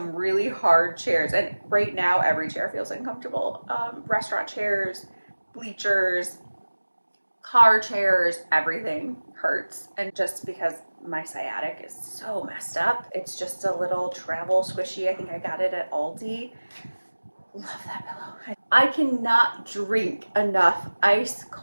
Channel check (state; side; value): inverted; both; correlation -1.00